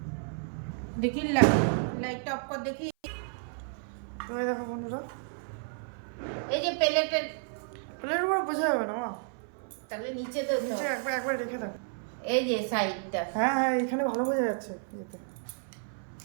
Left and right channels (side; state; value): left; silent; 55 dB below the other